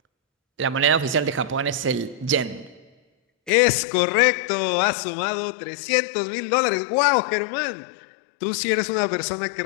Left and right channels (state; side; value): drops out; right; at 3.5 s